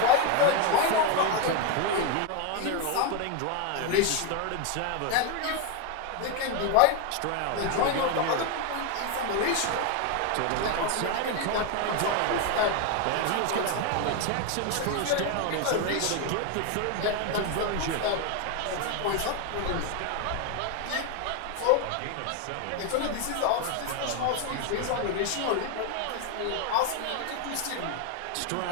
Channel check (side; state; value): both; different; correlation 0.01